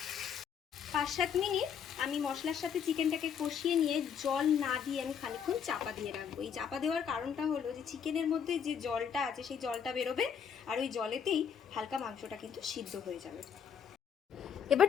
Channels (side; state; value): right; quieter; 7.6 dB